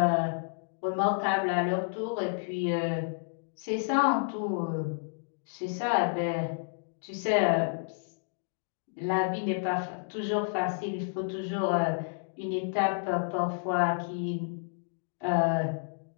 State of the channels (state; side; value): silent; right; digital silence